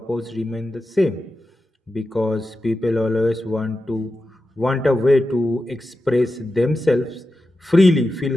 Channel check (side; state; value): both; normal; correlation 0.91